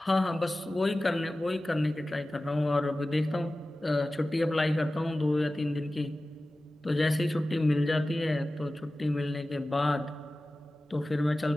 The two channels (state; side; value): normal; both; correlation 0.96